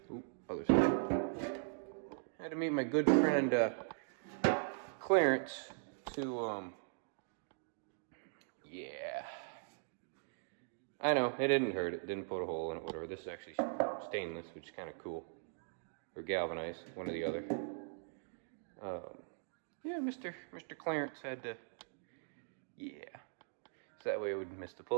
Other side. I had to meet my good friend Clarence to yeah. I know, it didn't hurt. It didn't put a hole in it, whatever. This is actually stainless, which is kind of cool. Or galvanized, one or the other. Yeah, Mr. Clarence had to, yeah. So that way it wouldn't miss the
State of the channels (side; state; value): left; silent; digital silence